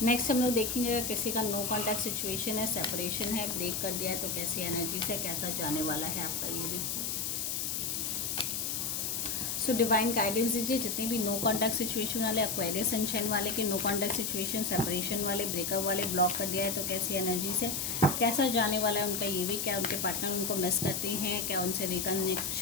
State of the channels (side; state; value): left; noise; hiss, 1 dB below the sound